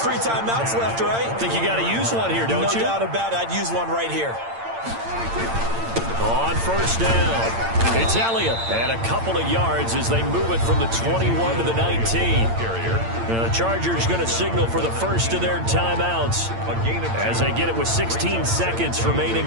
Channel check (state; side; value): late; left; 8.8 ms